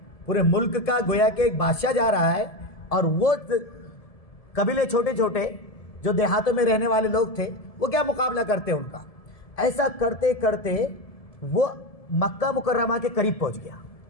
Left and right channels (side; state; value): right; late; 1.7 ms